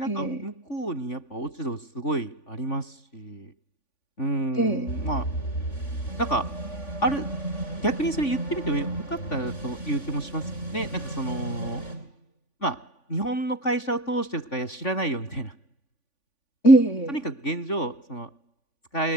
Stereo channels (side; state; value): right; late; 3.5 ms